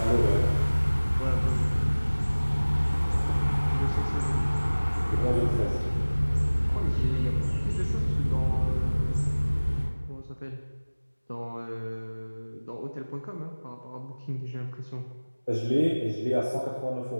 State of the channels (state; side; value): inverted; both; correlation -1.00